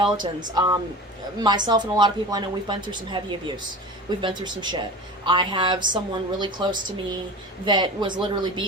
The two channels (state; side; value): normal; both; correlation 0.34